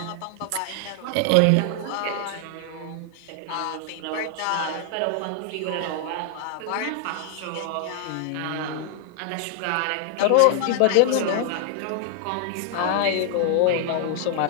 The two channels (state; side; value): different; both; correlation 0.00